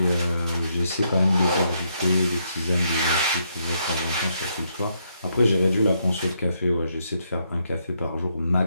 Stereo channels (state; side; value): inverted; both; correlation -0.76